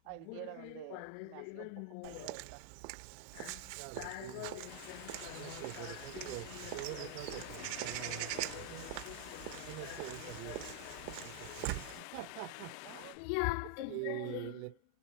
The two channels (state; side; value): different; both; correlation 0.00